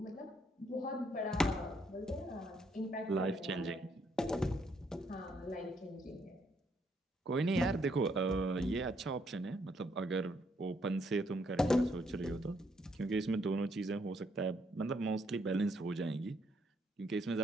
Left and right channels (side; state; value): both; normal; correlation 0.72